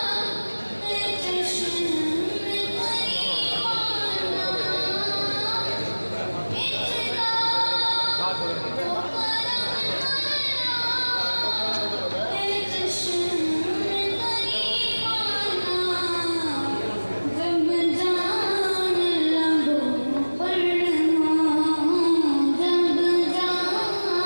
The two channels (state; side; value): inverted; both; correlation -1.00